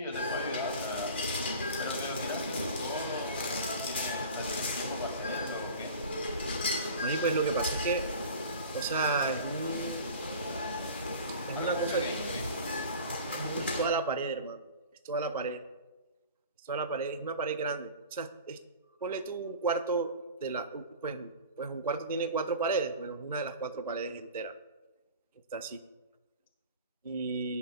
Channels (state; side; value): inverted; both; correlation -0.38